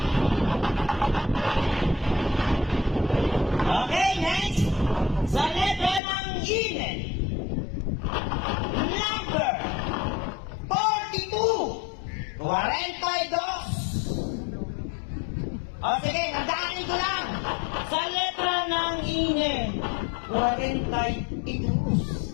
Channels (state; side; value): drops out; right; at 6.0 s